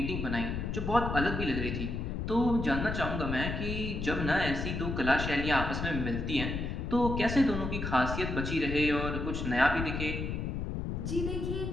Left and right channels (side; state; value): left; noise; rumble, 3 dB below the sound